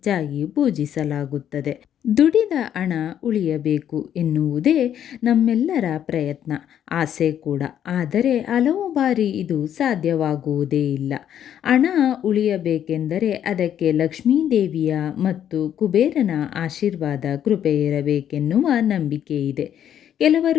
ಪೂಜಿಸಲಾಗುತ್ತದೆ. ದುಡಿದ ಹಣ ಉಳಿಯಬೇಕು ಎನ್ನುವುದೇ ನಮ್ಮೆಲ್ಲರ ಪ್ರಯತ್ನ, ಆಸೆ ಕೂಡ. ಆದರೆ ಹಲವು ಬಾರಿ ಇದು ಸಾಧ್ಯವಾಗುವುದೇ ಇಲ್ಲ. ಹಣ ಉಳಿಯಬೇಕೆಂದರೆ ಅದಕ್ಕೆ ಲಕ್ಷ್ಮೀದೇವಿಯ ಮತ್ತು ಕುಬೇರನ ಆಶೀರ್ವಾದ, ಕೃಪೆ ಇರಬೇಕೆನ್ನುವ ನಂಬಿಕೆ ಇದೆ.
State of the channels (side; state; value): right; quieter; 10.0 dB